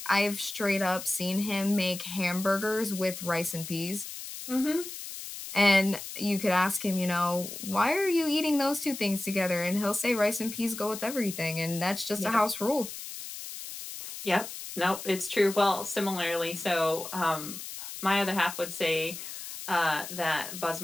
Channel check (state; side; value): noise; left; hiss, 10 dB below the sound